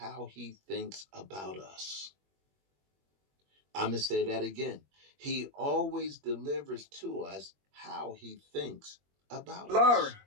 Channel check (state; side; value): late; left; 21 ms